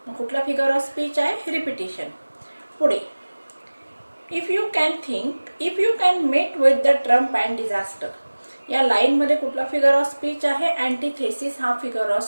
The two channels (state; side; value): inverted; both; correlation -1.00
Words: मग कुठला फिगर ऑफ स्पीच आहे? रिपिटेशन. पुढे if you can met with the Trump and disaster. या लाईन मध्ये कुठला फिगर ऑफ स्पीच आहे? अँटीथेसिस हा फिगर ऑफ